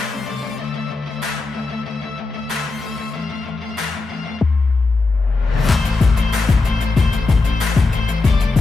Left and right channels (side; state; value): right; quieter; 3.6 dB